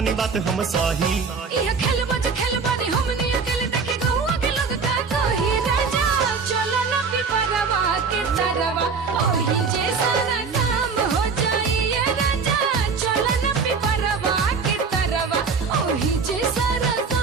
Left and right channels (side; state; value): left; quieter; 5.2 dB